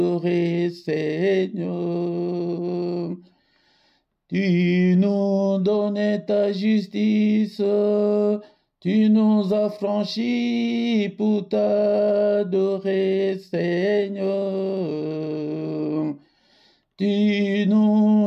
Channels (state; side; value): identical; both; correlation 1.00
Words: Seigneur. Tu nous donnais ta justice, tu nous as franchis pour t'adorer, Seigneur. Tu